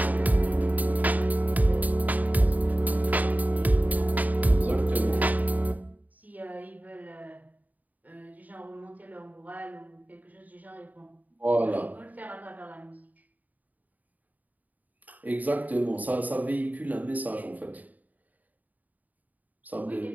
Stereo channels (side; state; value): left; late; 0.078 ms